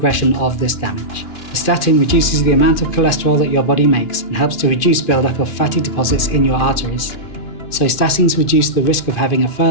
of this damage. The statin reduces the amount of cholesterol that your body makes and helps to reduce buildup of fatty deposits in your arteries. So statins reduce the risk of having a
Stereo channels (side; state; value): right; late; 2.5 ms